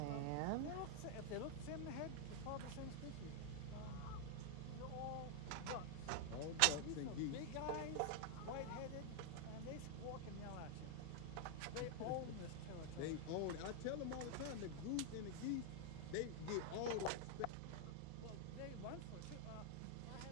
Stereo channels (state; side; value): different; both; correlation 0.00